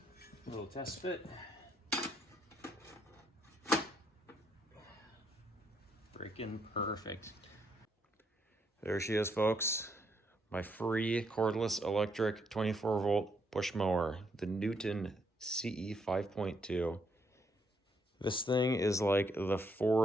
Little test fit. Freaking perfect. There she is, folks. My free cordless electric 24-volt push mower, the Newton CE 5.2. This thing is like the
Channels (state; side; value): normal; both; correlation 0.74